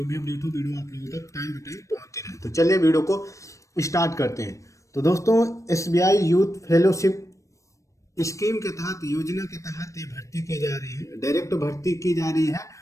भी अपडेट हो वीडियो आप लोगों तक टाइम टू टाइम पहुंचती रहे। तो चलिए वीडियो को स्टार्ट करते हैं। तो दोस्तों, एसबीआई यूथ फेलोशिप स्कीम के तहत, योजना के तहत ये भर्ती की जा रही है, डायरेक्ट भर्ती की जा रही है।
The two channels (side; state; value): right; late; 0.15 ms